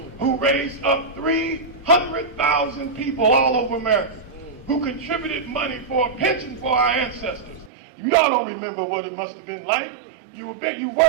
who raised up 300,000 people all over America, who contributed money for a pension for our ancestors. Y'all don't remember what it must have been like. You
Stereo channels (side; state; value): left; drops out; at 7.7 s